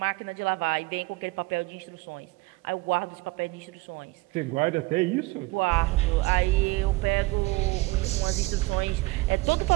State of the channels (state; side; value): quieter; left; 22.0 dB